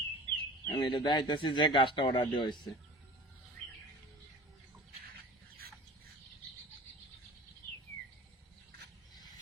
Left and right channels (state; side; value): normal; both; correlation 0.40